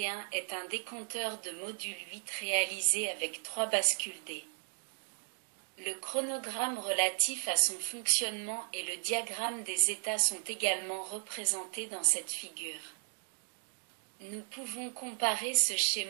est un décompteur de module 8 réalisé avec 3 bascules D. Le chronogramme relatif à son fonctionnement et le diagramme des états sont également représentés dans cette figure. Nous pouvons comparer ce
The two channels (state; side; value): silent; left; 54 dB below the other